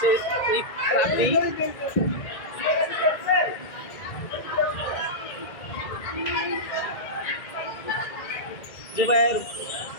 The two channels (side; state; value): right; late; 2.0 ms